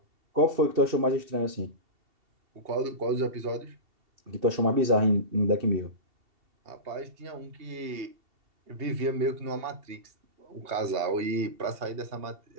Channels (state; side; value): late; left; 2.7 ms